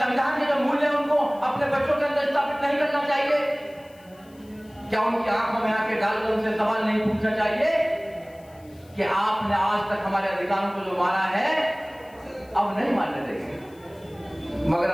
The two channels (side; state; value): left; noise; hiss, 29 dB below the sound